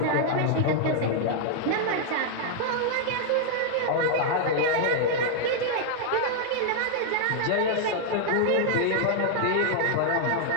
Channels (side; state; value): both; different; correlation 0.00